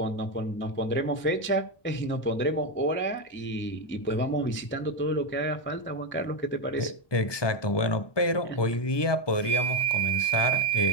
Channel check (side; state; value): right; late; 1.2 ms